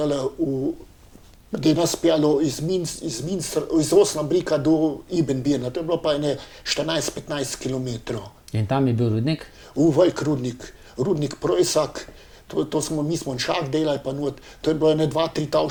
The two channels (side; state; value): both; identical; correlation 1.00